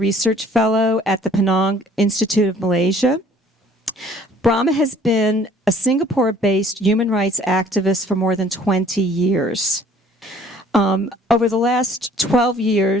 fellow at the Penang Institute of Malaysia. Braema has been a Singapore-based human rights activist for more than 20 years. Over the last 12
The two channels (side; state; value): both; normal; correlation 0.56